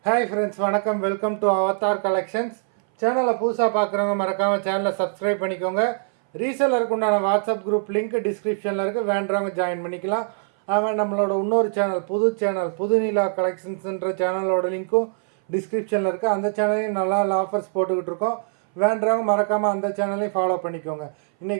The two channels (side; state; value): left; silent; 59 dB below the other